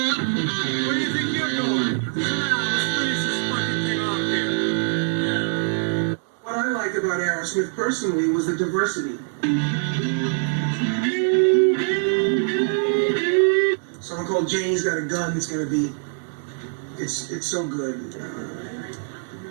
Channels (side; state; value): left; silent; digital silence